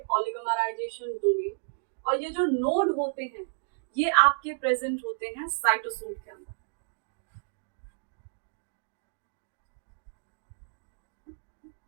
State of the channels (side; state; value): left; silent; digital silence